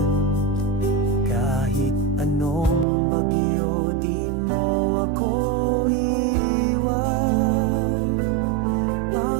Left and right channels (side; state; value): left; drops out; at 2.9 s